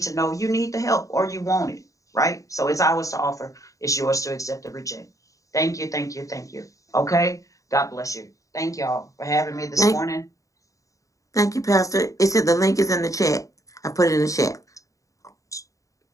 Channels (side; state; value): right; late; 0.16 ms